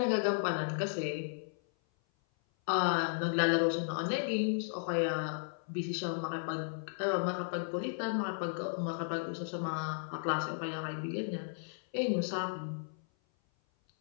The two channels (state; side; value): silent; right; 55 dB below the other